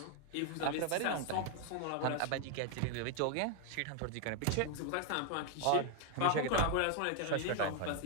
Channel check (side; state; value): both; different; correlation 0.00